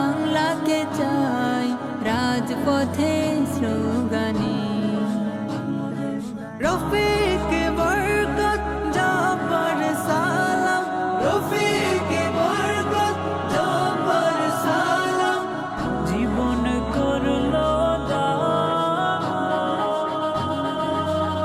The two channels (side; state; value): both; identical; correlation 1.00